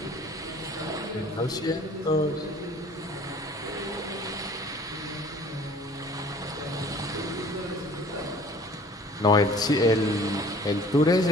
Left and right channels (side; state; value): both; normal; correlation 0.50